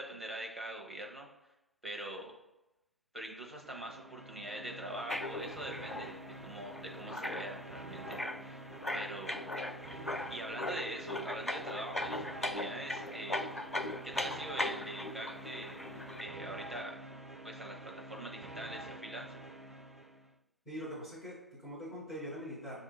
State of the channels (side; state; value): both; normal; correlation 0.47